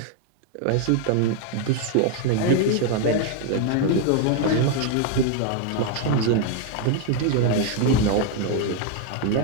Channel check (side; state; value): both; different; correlation 0.00